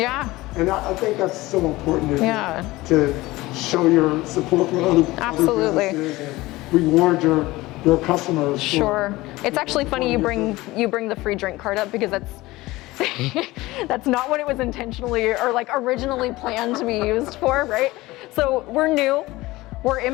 And I think that's so important to show your support for other businesses and reward your customers. Sure. It's actually funny you bring the free drink card up because that's not what it was intentionally or like originally planned to be used for, right? So we're new. We're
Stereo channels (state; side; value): quieter; right; 19.4 dB